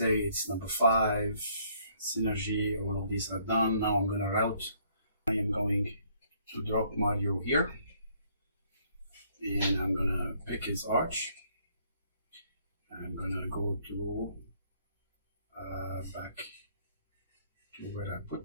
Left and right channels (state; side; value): inverted; both; correlation -0.65